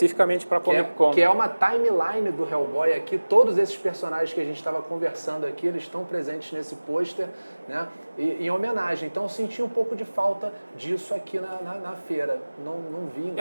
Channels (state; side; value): inverted; both; correlation -1.00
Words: para Comic Con. Que é uma timeline do Hellboy aqui, todos esses personagens que a gente estava conversando aqui, eles estão presentes nesse pôster, né? Em homenagem. Então eu senti um pouco de falta disso aqui na feira. não vi Foi